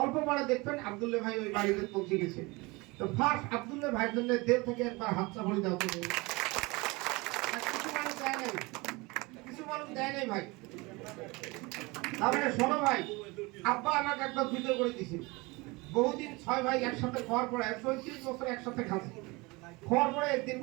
অল্প পরে দেখবেন আব্দুল্লাহ ভাই ওই বাড়িতে পৌঁছে গেছে তো ফার্স্ট আব্দুল্লাহ ভাইয়ের জন্য দেড় থেকে একবার হাতটা ভরে দাও তুমি কিছু মানুষ দেয় নাই ভাই তারপরে শোনো ভাই আব্বা আমাকে একবার ভিডিও করে দিছে বহুদিন 6 ভাই একসাথে খাওয়ার পরে 130 বছর একসাথে খাচ্ছি খাওয়ার পরে একদিন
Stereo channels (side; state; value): left; quieter; 24.6 dB